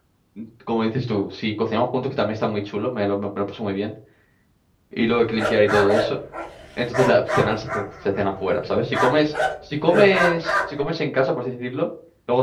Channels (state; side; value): identical; both; correlation 1.00